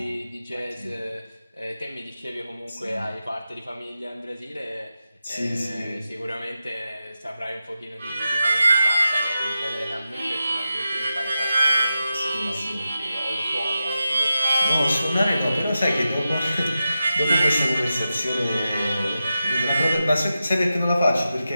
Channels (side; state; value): both; inverted; correlation -0.91